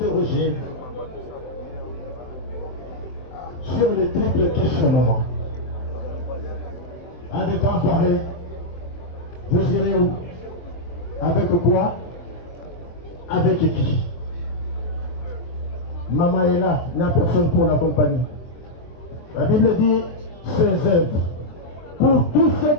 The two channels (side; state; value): right; late; 23 ms